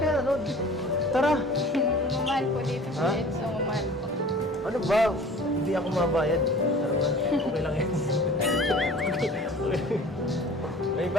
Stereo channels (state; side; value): normal; both; correlation 0.45